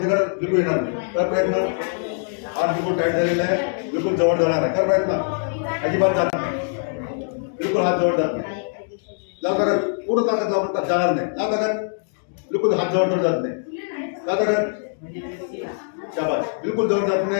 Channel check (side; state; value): right; silent; digital silence